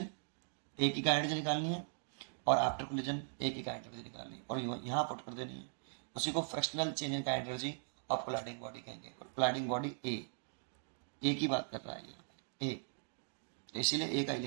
ए की काइनेटिक एनर्जी निकालनी है और आफ्टर कोलिजन ए की काइनेटिक एनर्जी निकालनी है, और यहाँ पुट कर देनी है। उसी को fractional change in kinetic energy of colliding body कहेंगे। कोलाइडिंग बॉडी ए की बात कर रहा है यहाँ पे ए, तो इसीलिए ए का ही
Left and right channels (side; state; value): left; silent; digital silence